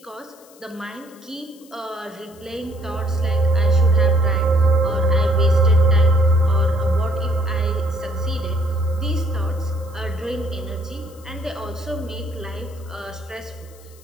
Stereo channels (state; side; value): noise; left; hiss, 26 dB below the sound